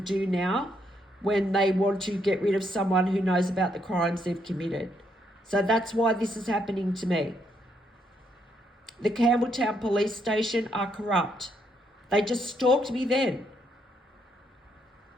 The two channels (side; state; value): both; normal; correlation 0.75